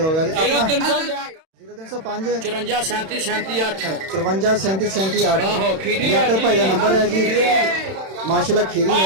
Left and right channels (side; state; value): left; late; 31 ms